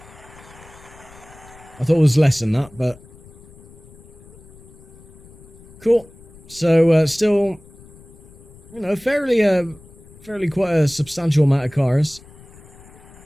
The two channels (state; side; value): noise; left; rumble, 22 dB below the sound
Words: I thought it was less than that, but... Cool. So, still, you know, fairly quite a substantial amount of cars